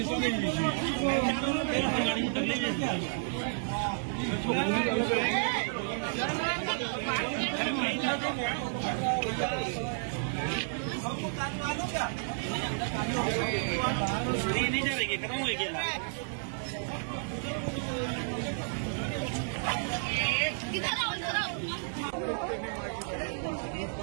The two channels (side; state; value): left; silent; digital silence